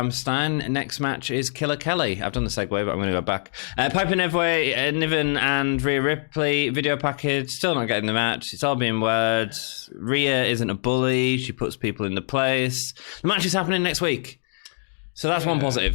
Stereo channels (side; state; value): right; silent; digital silence